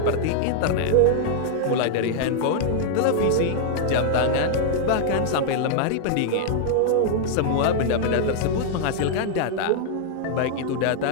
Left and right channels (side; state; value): both; different; correlation -0.01